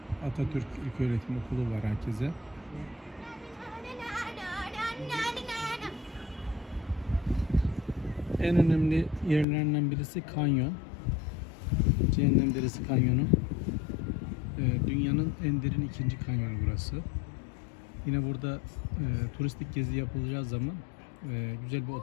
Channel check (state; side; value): drops out; right; at 9.5 s